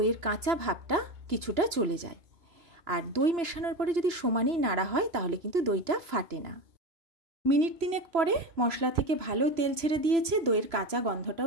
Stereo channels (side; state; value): left; late; 3.0 ms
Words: কাঁচা ভাবটা কিছুটা চলে যায়। আর দই মেশানোর পরে যদি সমানেই নাড়া হয় তাহলে কিন্তু দইটা ফাটে না। মিনিট 3 পরে মশলা থেকে ভালো তেল ছেড়ে দিয়েছে, দইয়ের কাঁচা